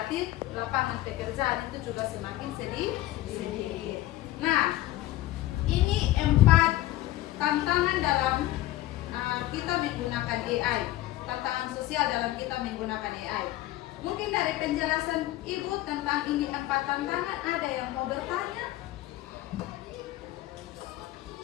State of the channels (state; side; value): quieter; right; 15.5 dB